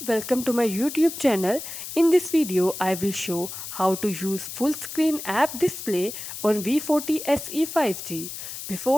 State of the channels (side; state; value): left; noise; hiss, 9 dB below the sound